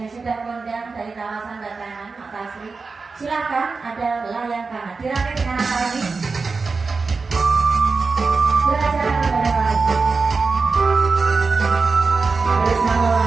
sudah kondang dari kawasan Batangan, Makasri, silakan ada layang kanan. Dirakit dengan apa lagi? Belajar kepada lagi. Bersama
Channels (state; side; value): quieter; left; 4.4 dB